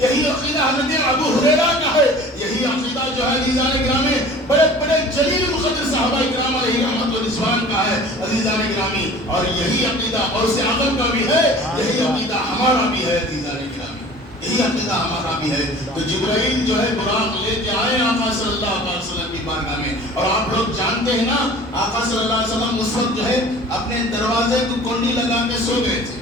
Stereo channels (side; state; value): both; normal; correlation 0.44